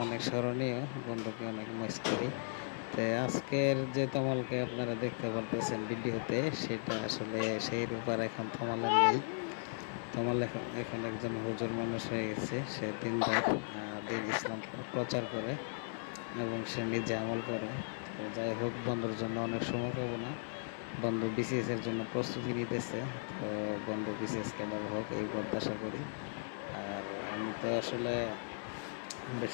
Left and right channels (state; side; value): silent; right; 53 dB below the other